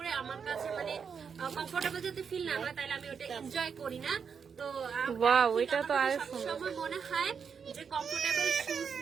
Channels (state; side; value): quieter; left; 6.5 dB